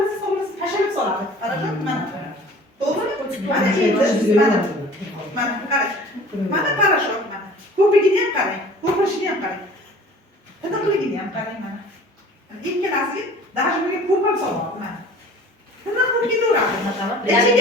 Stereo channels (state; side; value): normal; both; correlation 0.46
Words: tashlab soladi. Qarashib mana. To'g'rimi? Mana endi mana qarang. Mana parashok mana. Ko'pigini ham qarang. Ko'pirishini ham qarang. Tiniqligini ham qarang mana. Ikkalasiga даже bunga ko'p ham solyapti mana. Tiniq bo'lib ketaveradi.